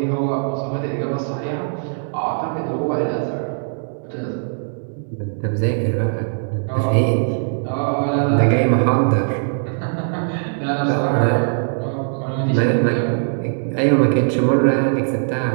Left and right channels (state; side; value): silent; left; digital silence